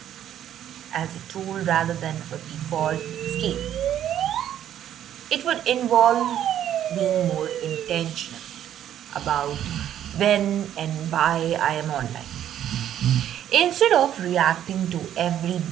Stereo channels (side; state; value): left; quieter; 10.8 dB